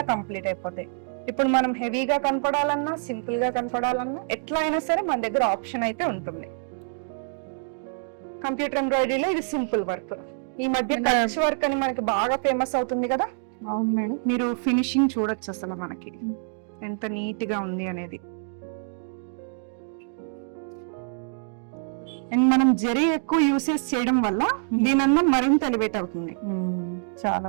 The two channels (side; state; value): left; silent; 61 dB below the other